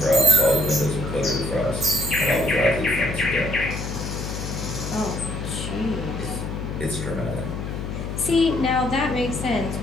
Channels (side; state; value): left; noise; hum, 5 dB below the sound